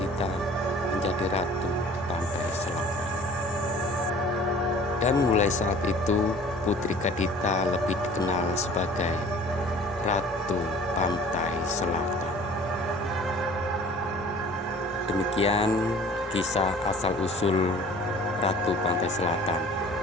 menjadi ratu pantai selatan. Dan mulai saat itu Putri Kadita lebih dikenal sebagai Ratu Pantai Selatan. Demikian kisah asal-usul Ratu Pantai Selatan.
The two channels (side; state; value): both; normal; correlation 0.48